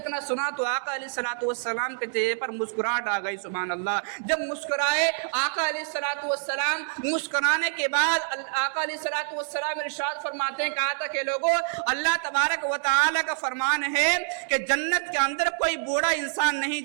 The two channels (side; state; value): left; silent; digital silence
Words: اتنا سنا تو آقا علیہ الصلوۃ والسلام کے چہرے پر مسکراہٹ آ گئی، سبحان اللہ۔ جب مسکرائے آقا علیہ الصلوۃ والسلام، مسکرانے کے بعد آقا علیہ الصلوۃ والسلام ارشاد فرماتے ہیں، کہا تھا کہ لوگوں اللہ تبارک و تعالی کا فرمان ہے کہ جنت کے اندر کوئی بوڑھا انسان نہیں